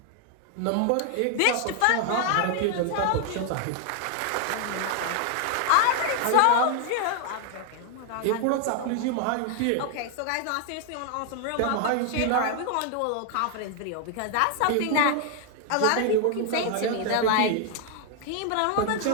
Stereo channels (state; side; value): different; both; correlation 0.00